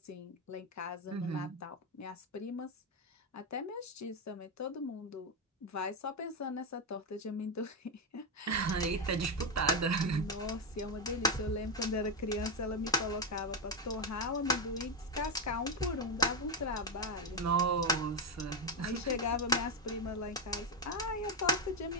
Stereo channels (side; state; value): both; normal; correlation 0.07